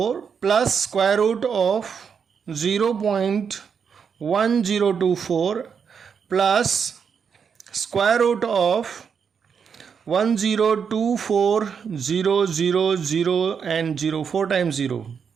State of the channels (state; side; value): quieter; left; 6.6 dB